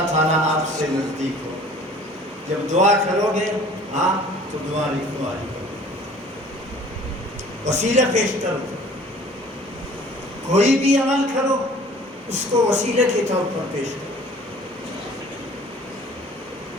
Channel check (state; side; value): normal; both; correlation 0.50